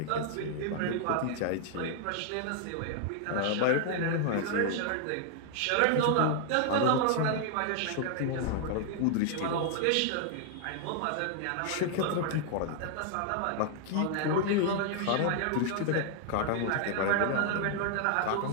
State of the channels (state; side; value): different; both; correlation 0.00